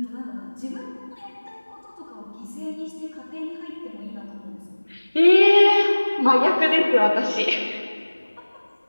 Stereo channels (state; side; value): inverted; both; correlation -1.00